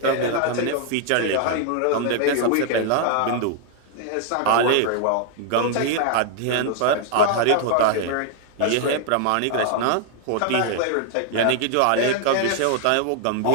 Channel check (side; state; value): both; different; correlation 0.00